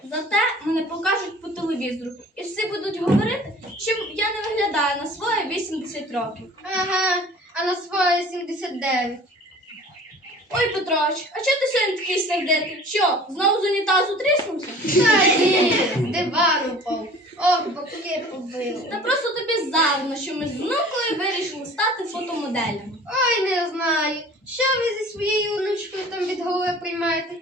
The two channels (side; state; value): both; normal; correlation 0.46